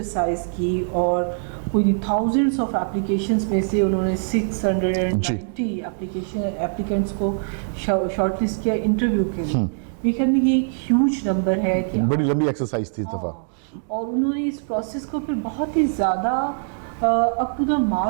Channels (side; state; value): left; silent; digital silence